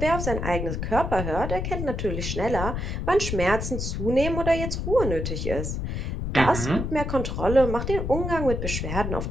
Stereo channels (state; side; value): noise; left; rumble, 3 dB below the sound